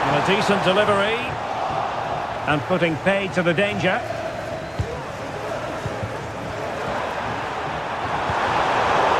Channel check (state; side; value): identical; both; correlation 1.00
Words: And a decent delivery. And putting paid to the danger.